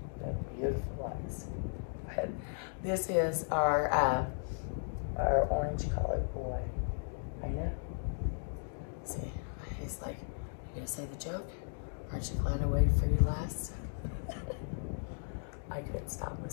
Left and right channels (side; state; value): right; silent; digital silence